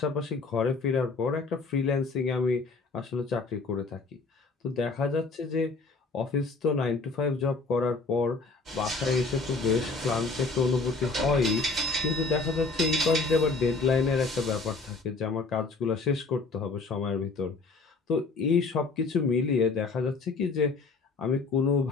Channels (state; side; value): quieter; right; 4.0 dB